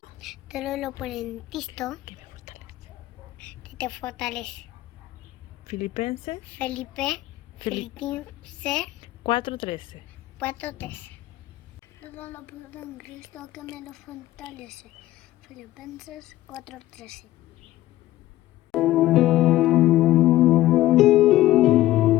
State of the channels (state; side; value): quieter; right; 15.4 dB